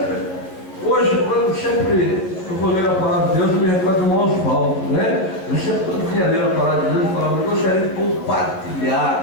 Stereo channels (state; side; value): late; right; 11 ms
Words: hoje, quando eu vou ler a palavra de Deus, eu me recordo do irmão Osvaldo, né? Eu sempre, quando vinha ler a palavra de Deus, eu falava, eu gostaria de